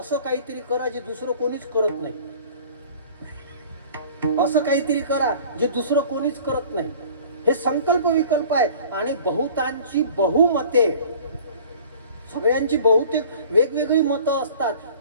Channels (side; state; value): both; inverted; correlation -0.47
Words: काहीतरी करा जे दुसरं कोणीच करत नाही. असं काहीतरी करा जे दुसरं कोणीच करत नाही. हे संकल्प विकल्प आहे. आणि बहुतांची बहुमते, सगळ्यांची बहुतेक वेगवेगळी मतं असतात.